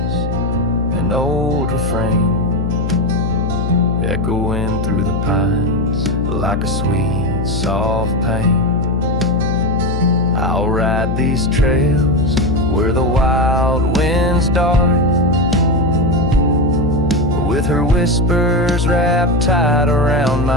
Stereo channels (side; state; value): left; noise; hum, 2 dB below the sound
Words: an old refrain, echoing through the pines like a sweet, soft pain. I'll ride these trails where the wild winds dart, with her whispers wrapped tight around